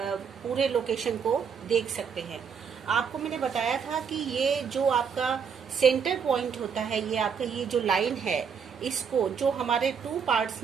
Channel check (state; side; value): quieter; left; 6.6 dB